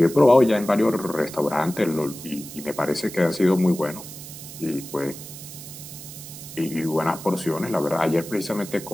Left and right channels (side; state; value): right; noise; hiss, 13 dB below the sound